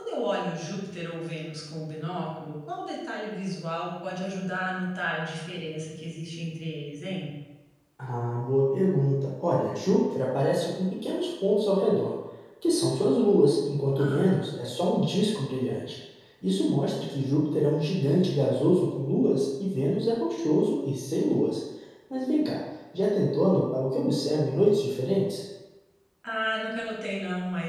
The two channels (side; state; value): both; identical; correlation 1.00